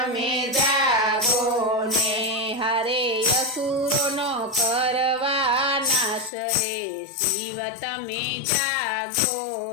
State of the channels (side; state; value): right; drops out; at 6.3 s